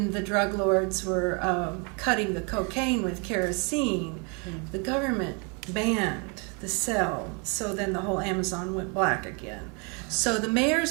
the drug lords were cutting the cocaine with kerosene, the government banned the sale. So then the whole Amazon went black again. So the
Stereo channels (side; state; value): left; quieter; 34.2 dB